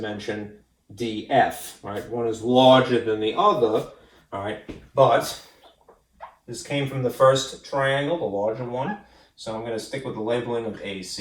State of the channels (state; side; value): identical; both; correlation 1.00